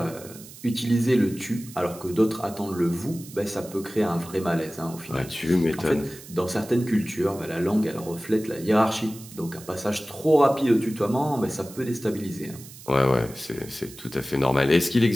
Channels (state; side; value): noise; right; hiss, 17 dB below the sound